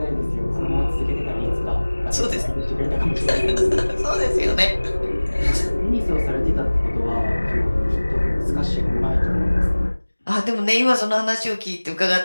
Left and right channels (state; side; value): inverted; both; correlation -1.00